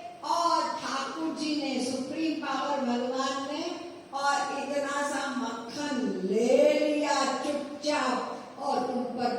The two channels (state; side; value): identical; both; correlation 1.00